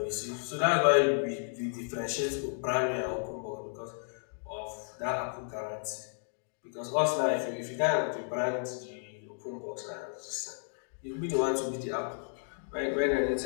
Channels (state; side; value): silent; right; digital silence